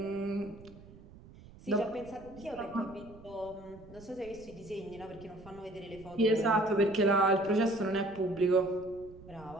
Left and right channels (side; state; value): right; noise; rumble, 20 dB below the sound